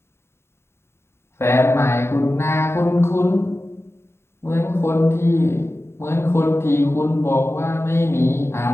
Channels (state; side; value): late; right; 0.12 ms